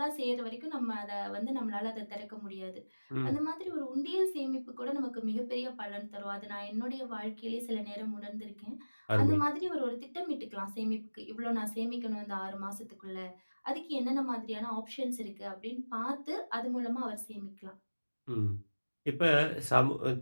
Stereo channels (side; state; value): both; inverted; correlation -1.00